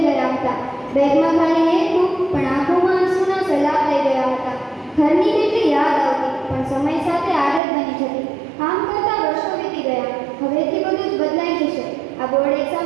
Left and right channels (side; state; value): left; drops out; at 7.6 s